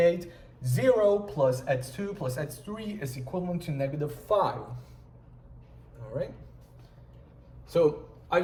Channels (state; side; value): identical; both; correlation 1.00